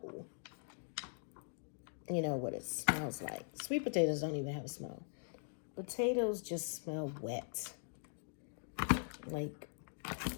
you know, what it smells like. Sweet potatoes don't even have a smell. Potatoes just smell wet, like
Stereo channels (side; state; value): right; silent; digital silence